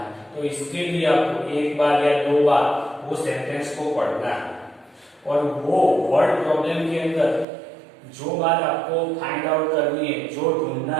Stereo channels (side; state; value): left; drops out; at 7.5 s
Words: तो इसके लिए आपको एक बार या दो बार वो सेंटेंस को पढ़ना है और वो वर्ड प्रॉब्लम के अंदर जो बात आपको फाइंड आउट करनी है, जो ढूंढना